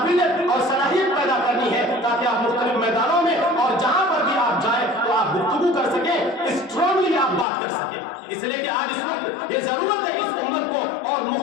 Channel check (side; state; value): right; drops out; at 7.5 s